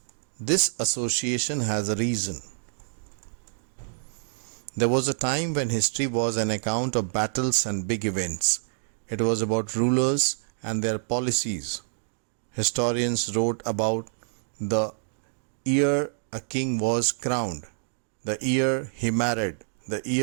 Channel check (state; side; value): silent; left; digital silence